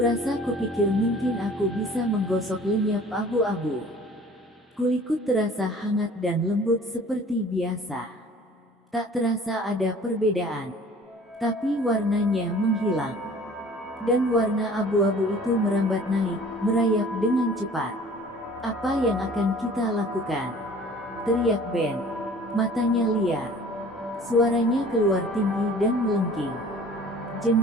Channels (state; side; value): normal; both; correlation 0.49